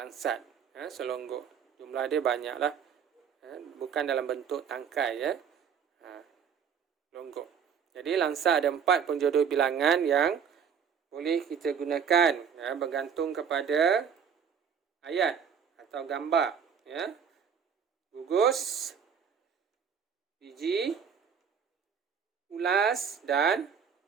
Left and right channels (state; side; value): quieter; left; 7.2 dB